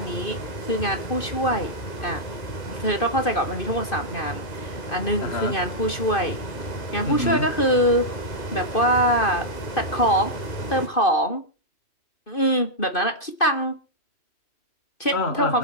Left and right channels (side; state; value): right; late; 2.5 ms